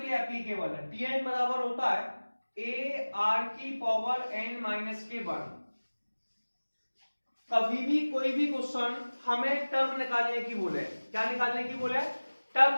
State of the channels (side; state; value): both; inverted; correlation -1.00